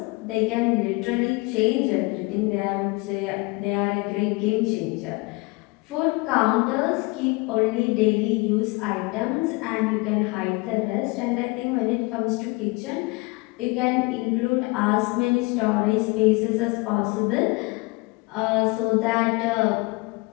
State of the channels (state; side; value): quieter; right; 25.5 dB